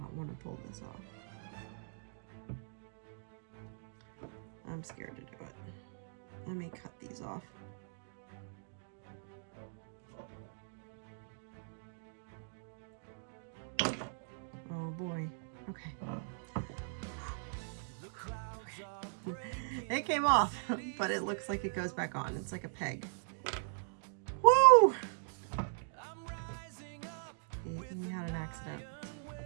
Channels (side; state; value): left; silent; digital silence